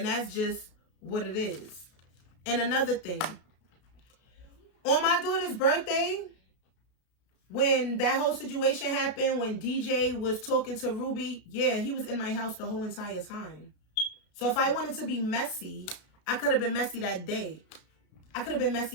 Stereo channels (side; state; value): right; late; 33 ms